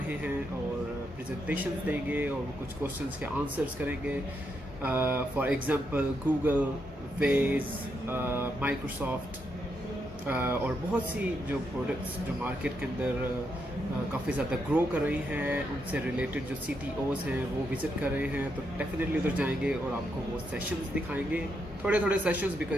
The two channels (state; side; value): normal; both; correlation 0.80